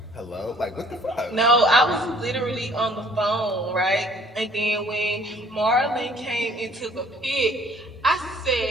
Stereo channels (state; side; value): normal; both; correlation 0.58